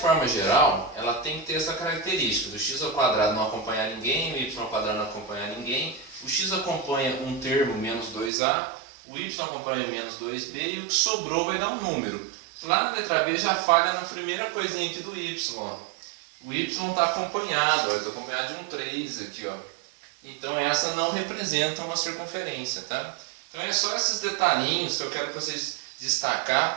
geral, ela tem que ter essa característica do x ao quadrado não acompanhar ninguém, o y ao quadrado não acompanhar ninguém, o x acompanha um termo, menos 2a, o y acompanha menos 2b e o que sobrou vai dar um número. Lá na letra B já falha na primeira coisinha aqui do y. Ó. O y está acompanhado, está acompanhado de um 3 aqui, ó. Então essa não representa uma circunferência, tá? Então é só esses detalhinhos que eu quero que vocês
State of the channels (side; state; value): left; drops out; at 8.3 s